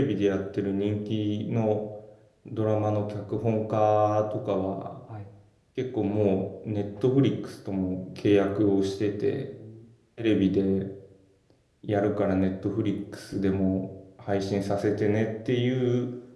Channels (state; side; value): identical; both; correlation 1.00